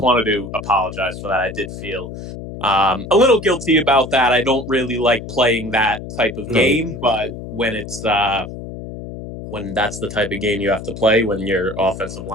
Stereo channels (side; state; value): left; noise; hum, 10 dB below the sound